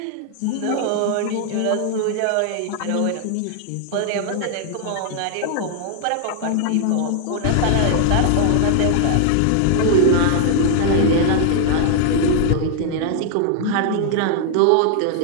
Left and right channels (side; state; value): both; different; correlation 0.00